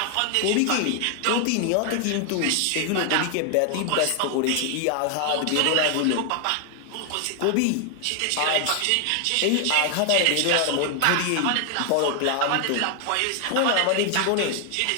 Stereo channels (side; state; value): both; different; correlation 0.00